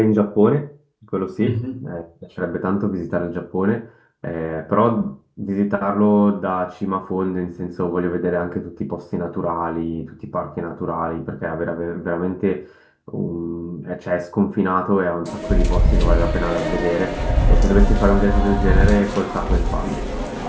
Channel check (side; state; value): both; identical; correlation 1.00